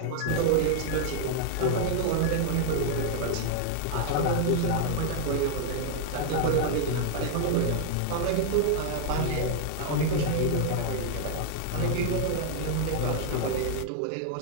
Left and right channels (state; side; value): different; both; correlation 0.00